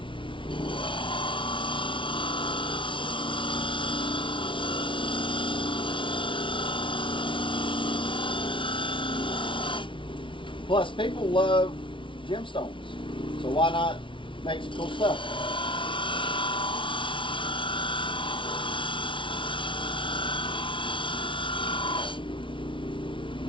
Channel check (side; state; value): right; late; 0.25 ms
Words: Plus, people love gemstones, so why not make some cool stuff?